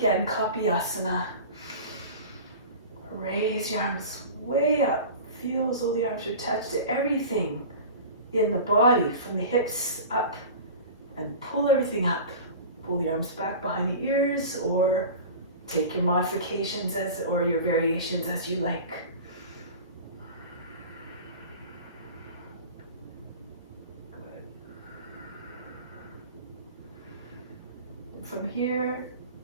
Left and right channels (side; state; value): both; inverted; correlation -0.35